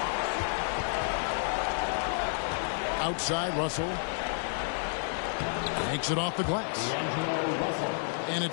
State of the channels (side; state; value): right; silent; digital silence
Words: Outside Russell. Takes it off the glass. And